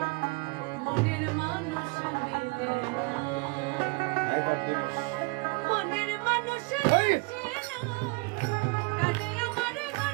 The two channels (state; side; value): quieter; left; 28.2 dB